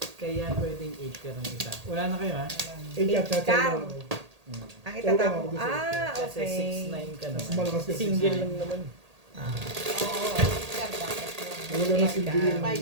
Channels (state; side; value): late; left; 1.8 ms